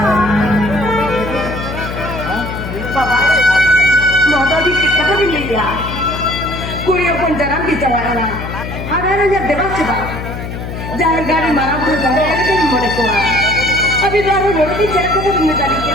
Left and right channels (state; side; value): noise; left; hum, 7 dB below the sound